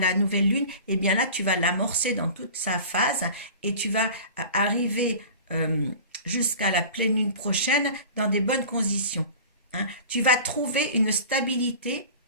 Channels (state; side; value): inverted; both; correlation -0.39